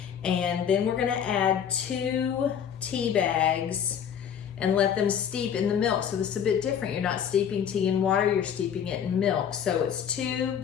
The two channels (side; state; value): right; quieter; 8.4 dB